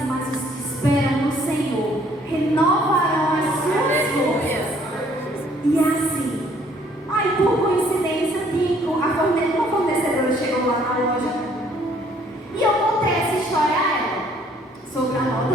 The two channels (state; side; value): normal; both; correlation 0.62